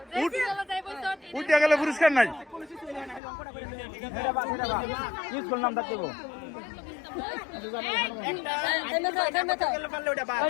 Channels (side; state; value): right; drops out; at 3.2 s